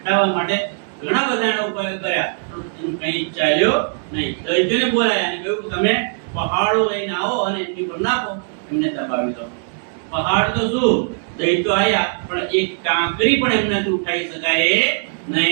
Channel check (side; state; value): left; silent; digital silence